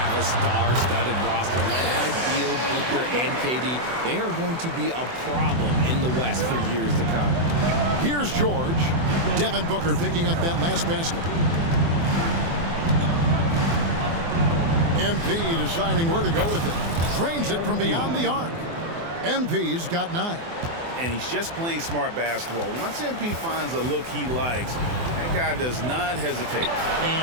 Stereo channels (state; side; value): late; left; 24 ms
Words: a star-studded roster led by Beal, Booker, and KD. They are going to be a problem in the West for years to come. Here's George. Devin Booker picking up that last basket. MP deciding where to go with it. Drains it from beyond the arc. MP's got 9. And he's just playing smart basketball. Once MP finds a look he likes, that guy does not hesitate.